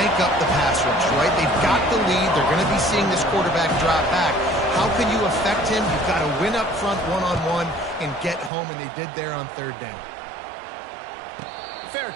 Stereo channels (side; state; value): left; drops out; at 8.5 s